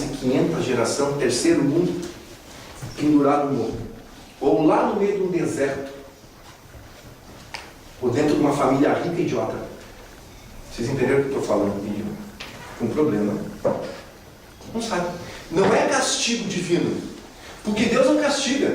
de 500 geração, terceiro mundo, pendurado no morro. Ou lá no meio de um deserto. Ou dentro de uma família rica e idiota. Vocês entenderam o que eu estou falando? Com problema. Não sabe. Não é castigo divino. Porque Deus não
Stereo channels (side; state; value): both; identical; correlation 1.00